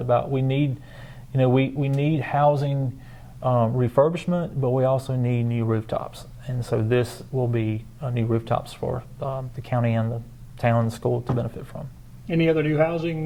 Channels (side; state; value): both; identical; correlation 1.00